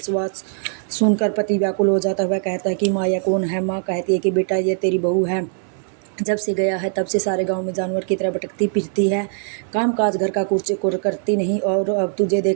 सुनकर पति व्याकुल हो जाता हुआ कहता है कि माँ यह कौन है। माँ कहती है कि बेटा ये तेरी बहू है, जब से गया है तब से सारे गांव में जानवर की तरह भटकती फिरती है, काम काज घर का कुछ करती नहीं और अब तुझे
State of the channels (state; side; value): silent; left; digital silence